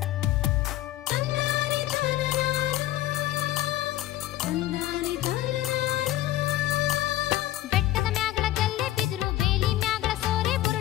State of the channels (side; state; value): right; quieter; 14.9 dB